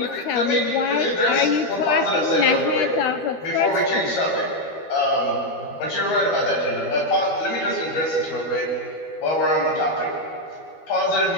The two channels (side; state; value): right; late; 12 ms